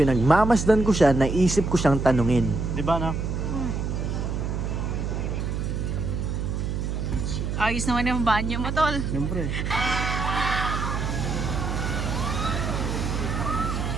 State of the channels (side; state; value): right; noise; hum, 2 dB below the sound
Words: ko siya, naisip ko siyang tanungin. Di ba na? Ayos naman yung banyo mo, tol. Siyempre.